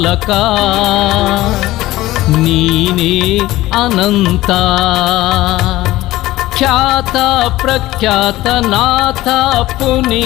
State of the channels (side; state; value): right; quieter; 16.9 dB